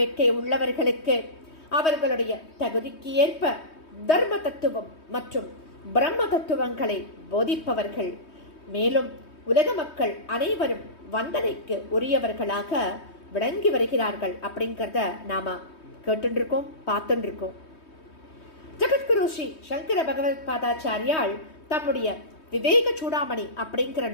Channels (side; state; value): right; late; 3.2 ms